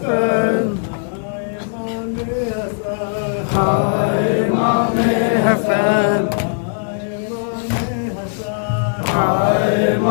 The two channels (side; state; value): right; silent; digital silence